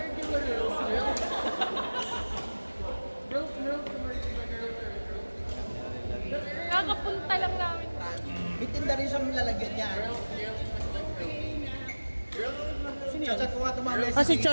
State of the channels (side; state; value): both; inverted; correlation -1.00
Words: Kakapunta lang namin. May tinda rin siyang lalagyan niya. Chat ko nga tumamay Ah, si